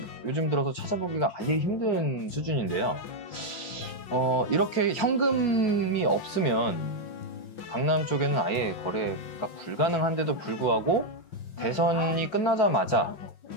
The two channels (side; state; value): right; late; 5.7 ms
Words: 요즘 들어서 찾아보기가 아예 힘든 수준인데요. 이렇게 현금이 없으면 강남 쪽에는 아예 거래가 불가능한데도 불구하고 대선이 끝나자마자